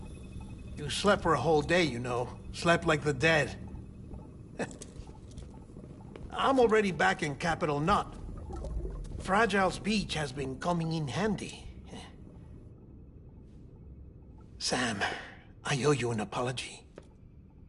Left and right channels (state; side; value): identical; both; correlation 1.00